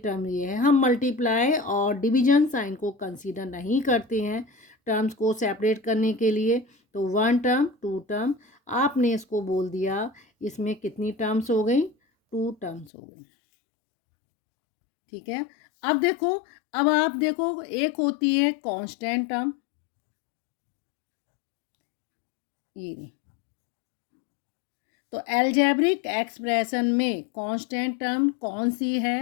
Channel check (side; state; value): right; drops out; at 12.9 s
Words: ये है। हम मल्टीप्लाई और डिवीजन साइन को कंसीडर नहीं करते हैं टर्म्स को सेपरेट करने के लिए। तो 1 टर्म 2 टर्म, आपने इसको बोल दिया, इसमें कितनी टर्म्स हो गई, 2 टर्म्स हो गई। ठीक है, अब देखो, अब आप देखो एक होती है कांस्टेंट टर्म, ये नहीं। तो अलजेब्रिक एक्सप्रेशन में कांस्टेंट टर्म कौन सी